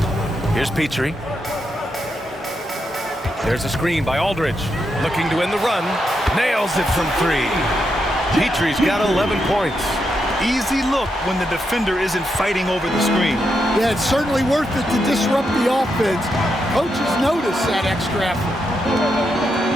Here's Petrie. There's a screen by Aldridge. Looking to win the run. Nails it from 3. Petrie's got 11 points. Easy look when the defender isn't fighting over the screen. Yeah, it's certainly worth it to disrupt the offense. Coaches notice that extra effort.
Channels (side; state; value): both; normal; correlation 0.83